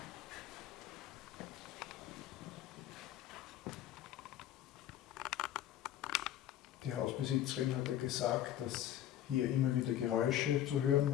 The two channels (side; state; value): right; quieter; 11.8 dB